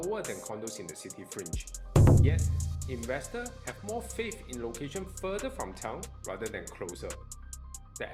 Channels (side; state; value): both; identical; correlation 1.00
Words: than condos in the city fringe. Yet, investors have more faith in location further from town rather than closer. The